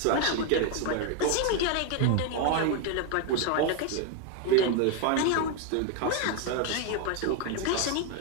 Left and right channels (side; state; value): both; different; correlation 0.01